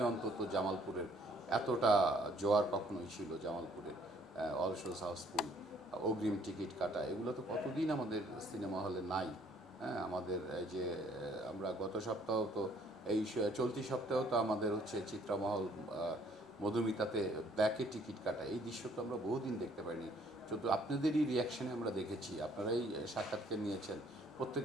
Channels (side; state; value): both; normal; correlation 0.62